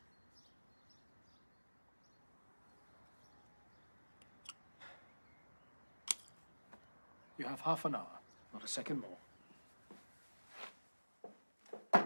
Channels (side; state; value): both; inverted; correlation -1.00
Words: You have half an hour, not a second more.